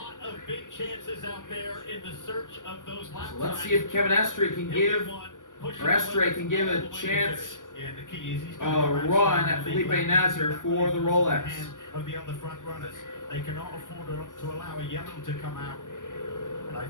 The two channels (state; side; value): late; right; 0.87 ms